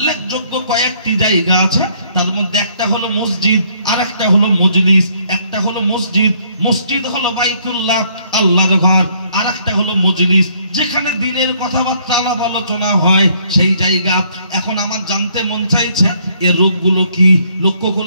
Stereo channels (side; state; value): both; inverted; correlation -0.66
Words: কয়েকটি জায়গা আছে, তার মধ্যে একটা হলো মসজিদ, আর একটা হলো মজলিস। একটা হলো মসজিদ, মসজিদ হলো বাইতুল্লাহ, আল্লাহর ঘর, আর একটা হলো মজলিস, যেখানে দিনের কথাবার্তা আলাপ আলোচনা হয়, সেই জায়গা। এখন আমার জানতে মন চাইছে, এর রোগগুলো কি? লক্ষ্য